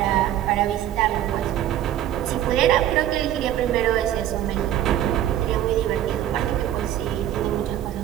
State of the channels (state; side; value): quieter; left; 12.0 dB